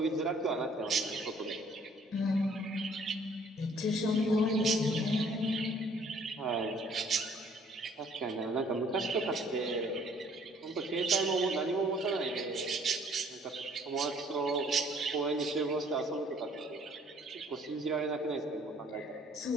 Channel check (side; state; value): both; normal; correlation 0.59